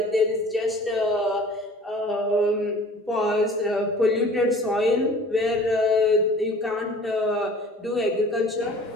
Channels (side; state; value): both; normal; correlation 0.47